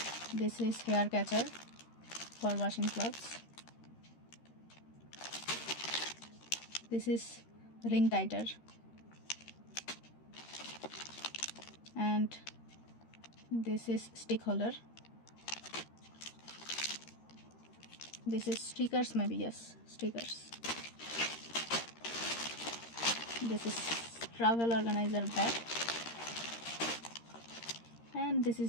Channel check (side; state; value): right; late; 13 ms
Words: This is hair catcher for washing clothes. This is ring tighter. And this is stick holder. This is stickers, maybe, yes, stickers. This is travel organizer bag. And this